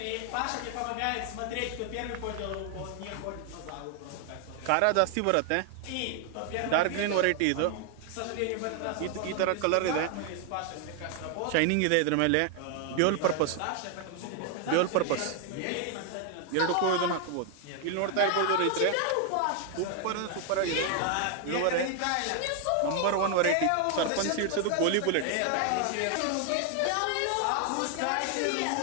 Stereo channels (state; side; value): different; both; correlation 0.00